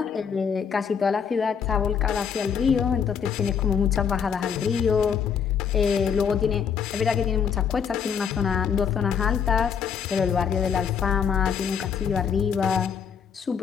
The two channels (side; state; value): right; quieter; 7.1 dB